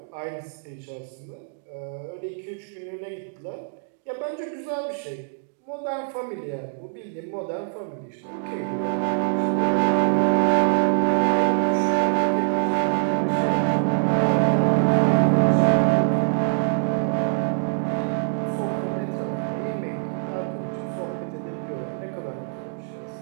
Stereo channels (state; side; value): silent; left; digital silence